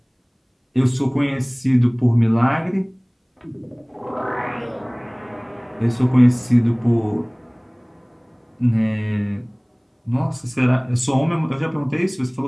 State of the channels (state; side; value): identical; both; correlation 1.00